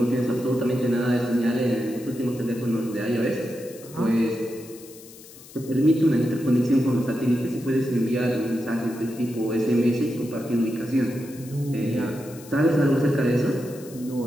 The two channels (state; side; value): noise; left; hiss, 20 dB below the sound